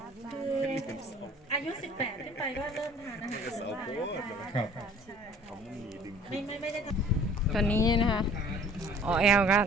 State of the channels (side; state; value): both; normal; correlation 0.51